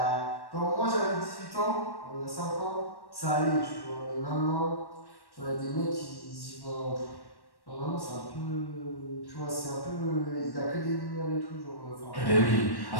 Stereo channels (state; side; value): late; right; 1.1 ms